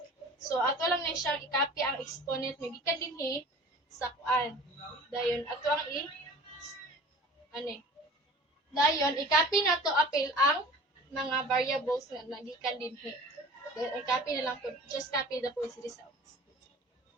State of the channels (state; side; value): normal; both; correlation 0.43